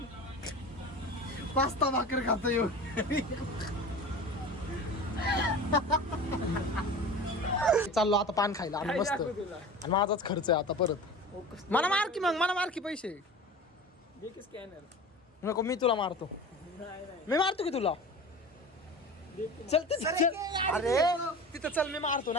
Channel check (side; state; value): both; normal; correlation 0.35